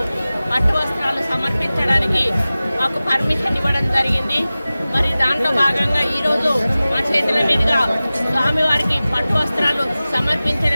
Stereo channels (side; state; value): both; inverted; correlation -0.97